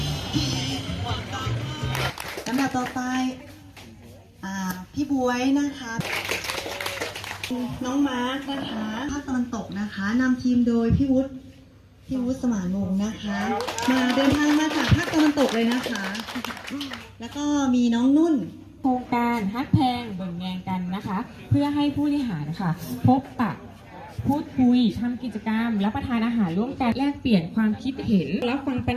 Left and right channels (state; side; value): identical; both; correlation 1.00